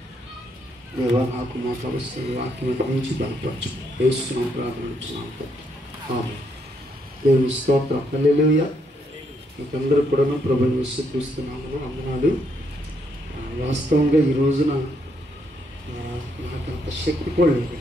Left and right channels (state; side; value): normal; both; correlation 0.75